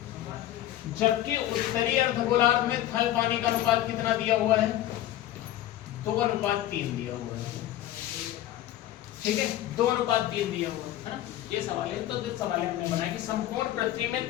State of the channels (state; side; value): quieter; right; 13.5 dB